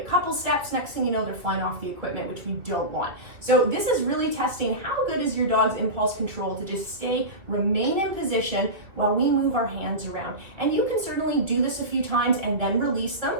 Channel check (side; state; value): left; late; 2.6 ms